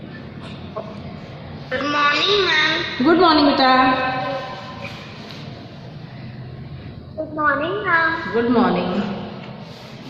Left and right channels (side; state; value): both; identical; correlation 1.00